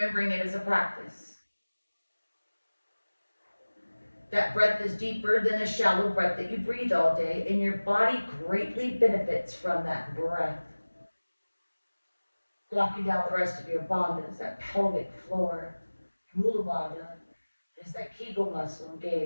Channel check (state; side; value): inverted; both; correlation -1.00